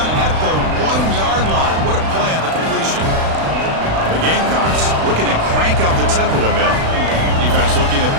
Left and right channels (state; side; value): late; left; 36 ms